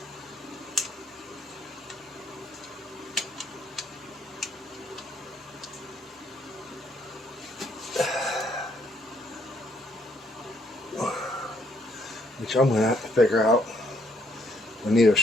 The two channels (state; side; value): normal; both; correlation 0.69